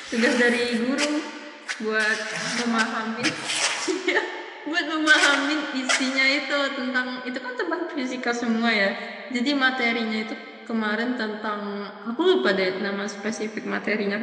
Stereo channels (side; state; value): both; identical; correlation 1.00